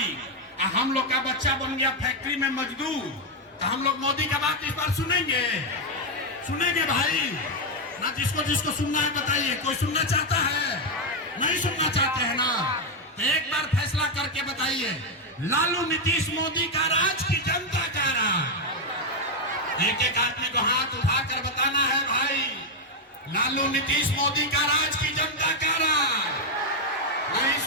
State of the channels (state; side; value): normal; both; correlation 0.03